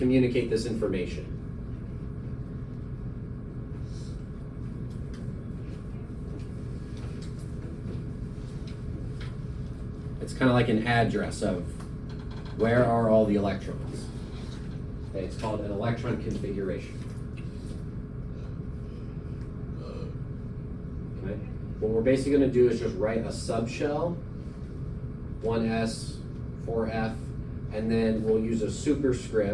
this information. It's kind of like an address of where are all the electrons. Okay, it's called an electron configuration. Okay, what we're basically going to do is just write a subshell, 1s, 4f, and then we'll use a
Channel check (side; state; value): both; identical; correlation 1.00